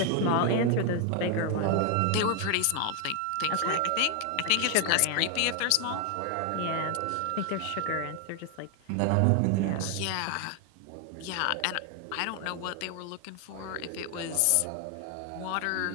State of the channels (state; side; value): different; both; correlation 0.01